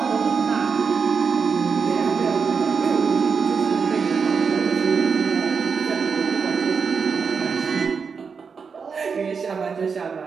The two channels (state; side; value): quieter; left; 5.7 dB